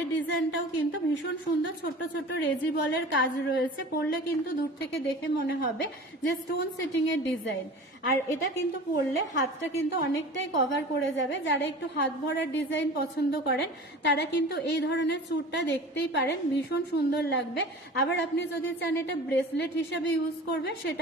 ডিজাইনটাও কিন্তু ভীষণ সুন্দর, ছোট ছোট রেজি বলের কাজ রয়েছে। পরলে কিন্তু দূর থেকে দেখে মনে হবে যে স্টোন সেটিং এর ডিজাইন। আর এটা কিন্তু পরলে হাতটা কিন্তু অনেকটাই কভার করে যাবে। যারা একটু হাত ভরার ডিজাইন পছন্দ করেন, তারা কিন্তু এই ধরনের চুড়টা দেখতেই পারেন, ভীষণ সুন্দর লাগবে। আবার আপনি যদি চান এটা ব্রেসলেট হিসাবে ইউজ করবে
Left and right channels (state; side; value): normal; both; correlation 0.39